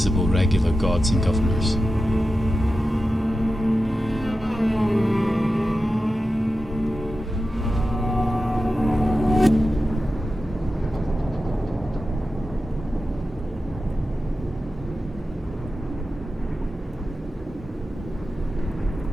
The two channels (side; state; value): both; normal; correlation 0.92